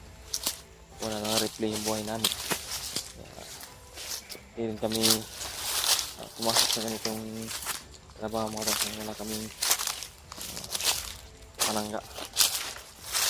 Wala nang replay yung buhay namin. Hindi rin kami pumasok sa ganitong trabaho mga tol. Wala kaming panangga.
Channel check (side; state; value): both; identical; correlation 1.00